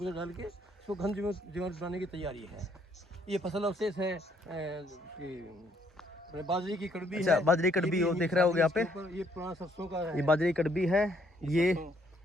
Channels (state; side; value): normal; both; correlation 0.68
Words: डाल के इसको घन जीवामृत बनाने की तैयारी है। ये फसल अवशेष है बाजरे की कड़बी। अच्छा, बाजरे की कड़बी, वो देख रहे हो यहाँ पे, ये पुराना सरसों का है। ये बाजरे की कड़बी है। ये